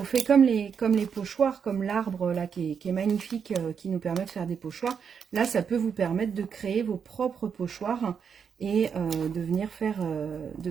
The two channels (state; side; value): quieter; left; 6.8 dB